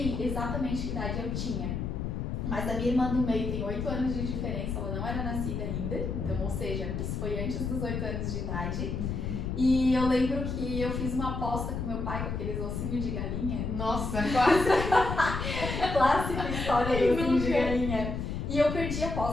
exatamente que idade eu tinha. Mas a minha irmã do meio tem 8 anos de diferença, ela não era nascida ainda. Então, ou seja, isso foi antes dos 8 anos de idade. E eu lembro que eu fiz uma aposta com meu pai com aqueles ossinhos de galinha. Nossa, quase! Clássica história do ossinho de galinha. E eu perdi a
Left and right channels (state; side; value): noise; left; rumble, 3 dB below the sound